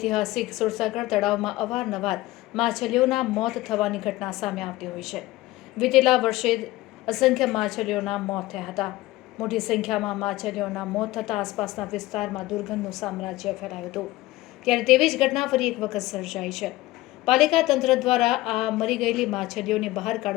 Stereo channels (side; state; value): right; quieter; 18.0 dB